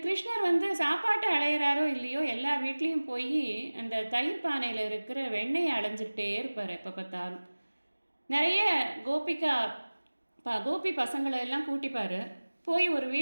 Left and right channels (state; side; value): inverted; both; correlation -1.00